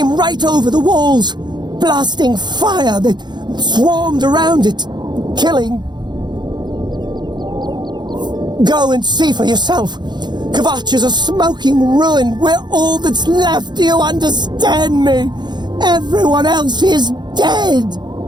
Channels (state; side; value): late; left; 0.21 ms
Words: right over the walls, blasting fire that swarmed around it, killing. Go and see for yourself. Kvatch is a smoking ruin. We're all that's left. Do you understand me? Everyone else is dead.